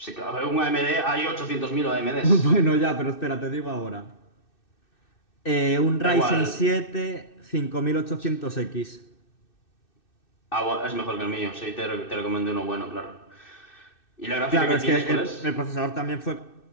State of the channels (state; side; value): late; right; 2.6 ms